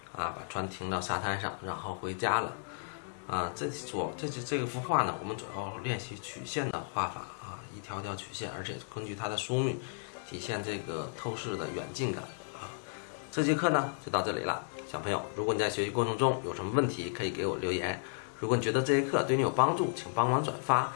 啊，把船停到沙滩上，然后回家了。这个幅画呢，我们主要练习曲线的画法啊，一条条曲线，而且根据它的疏密，体现这个透视的远近感啊。这节课呢就到这里了，小朋友，如果你在学习过程中有什么问题，可以给我留言。如果你觉得这节课对你有帮助，请帮忙转发，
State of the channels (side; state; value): right; silent; 55 dB below the other